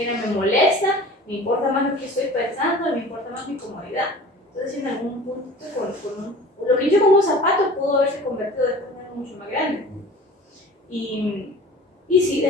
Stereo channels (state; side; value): normal; both; correlation 0.42